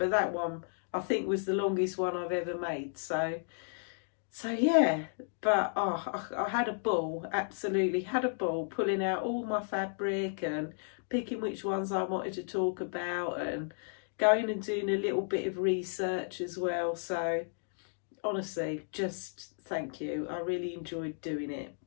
that one I think was the longest one I've ever made. So yeah, but I had a ball, absolutely had a ball, pulling out all my fabric and picking which ones I wanted to talk about, and going and doing a little bit of research as well. So honestly, just thank you. I really enjoyed doing it.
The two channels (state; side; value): silent; right; digital silence